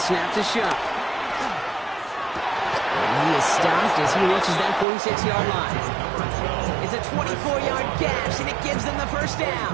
to Shuck. And he is stopped as he reaches that 46-yard line. It's a 24-yard gash, and it gives them the first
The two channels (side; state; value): left; drops out; at 4.9 s